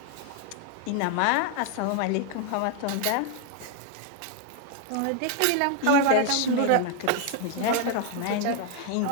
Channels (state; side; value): different; both; correlation 0.00